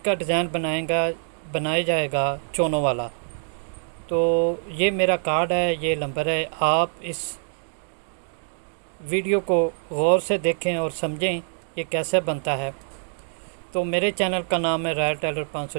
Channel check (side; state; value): left; silent; digital silence